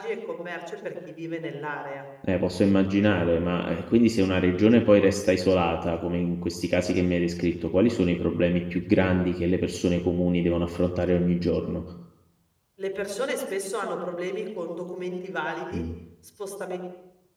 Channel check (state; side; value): identical; both; correlation 1.00